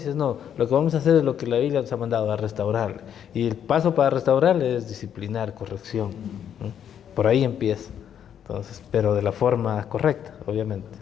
no. Lo que vamos a hacer es lo que la Biblia nos ha mandado, a restaurarle. Y el paso para restaurarle es disciplinar, corrección. Por ahí empieza. Entonces, pero de la forma correcta, obviamente.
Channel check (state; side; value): quieter; right; 9.1 dB